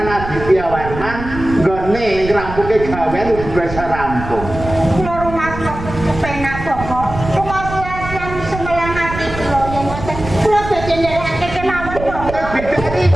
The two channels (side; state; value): right; noise; rumble, 9 dB below the sound